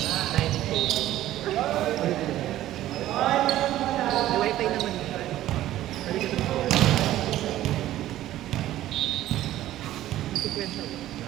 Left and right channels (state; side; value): quieter; left; 14.0 dB